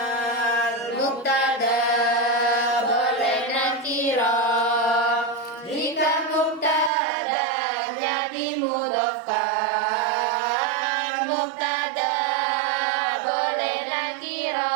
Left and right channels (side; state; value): left; drops out; at 6.9 s